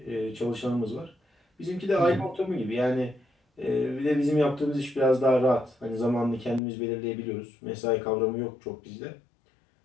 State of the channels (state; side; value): drops out; right; at 6.6 s